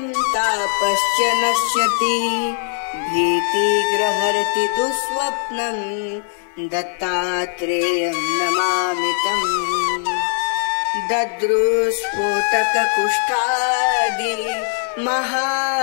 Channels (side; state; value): right; silent; 62 dB below the other